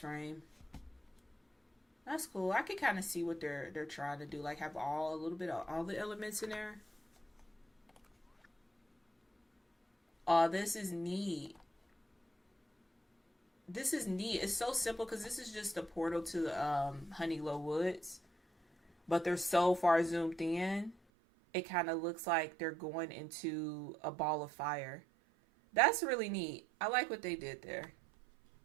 That's cool. I can kind of see what they're trying to do, like have a little bit of all the elements in there. Oh, this is neat. This is neat. It's so simple because this is just a portal to the Honeyglow Woods, but they're so far zoomed in, it kind of looks like they're going into a ball of fire. That's really neat. I like what they did there.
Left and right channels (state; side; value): drops out; left; at 21.0 s